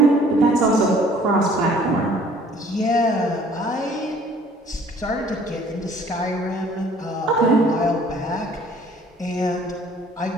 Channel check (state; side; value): normal; both; correlation 0.55